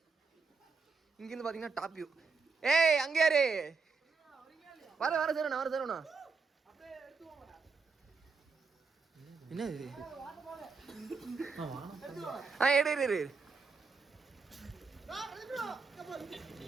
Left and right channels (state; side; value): quieter; left; 4.7 dB